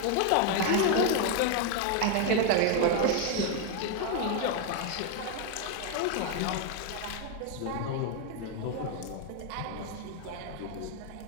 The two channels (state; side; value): different; both; correlation 0.01